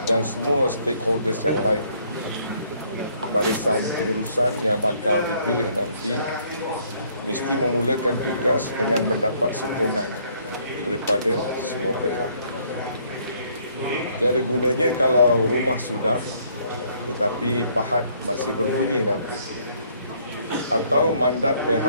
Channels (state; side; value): inverted; both; correlation -0.65